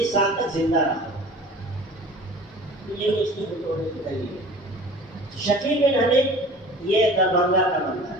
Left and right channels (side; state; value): both; normal; correlation 0.43